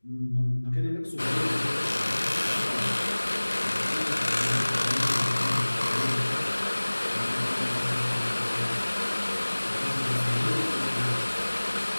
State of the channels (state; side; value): inverted; both; correlation -1.00